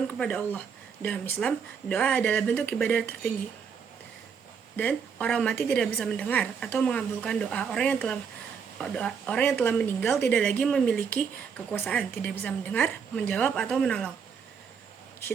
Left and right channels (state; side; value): quieter; left; 6.6 dB